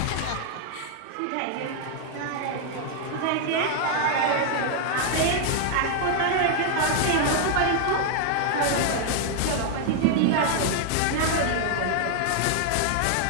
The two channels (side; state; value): both; different; correlation 0.00